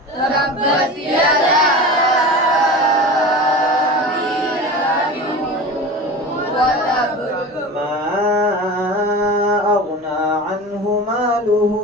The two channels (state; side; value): normal; both; correlation 0.32